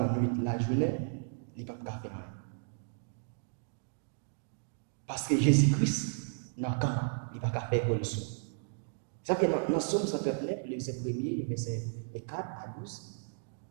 nuit, la journée, il ne peut pas faire rien. Parce que Jésus-Christ, il ne peut pas faire pour le sou. Ça fait dans Somme 139, le verset 1er, verset 4 à 12,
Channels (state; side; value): silent; left; digital silence